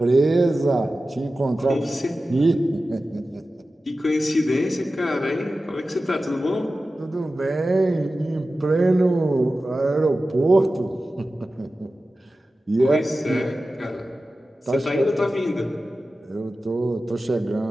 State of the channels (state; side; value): normal; both; correlation 0.94